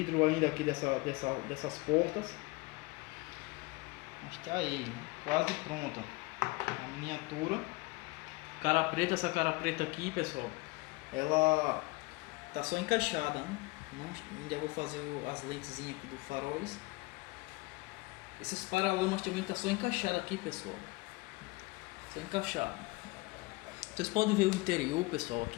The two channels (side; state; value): right; quieter; 23.4 dB